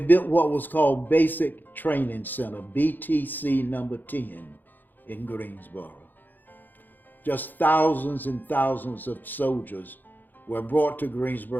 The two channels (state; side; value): late; right; 0.087 ms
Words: what was called Basic Training Center, BTC number 10 in Greensboro. Just thousands and thousands of soldiers were brought to